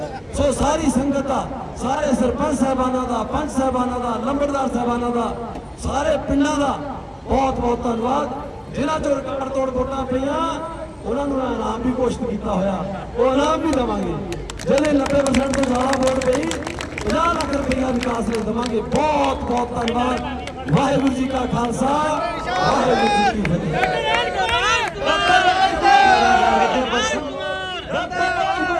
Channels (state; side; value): identical; both; correlation 1.00